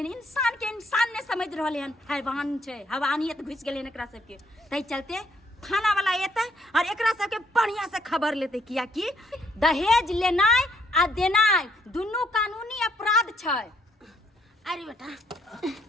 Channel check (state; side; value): normal; both; correlation 0.69